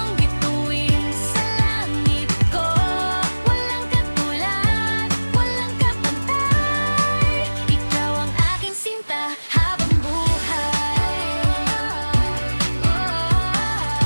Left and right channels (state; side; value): inverted; both; correlation -1.00